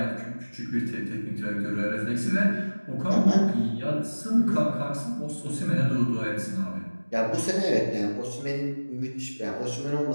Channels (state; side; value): inverted; both; correlation -1.00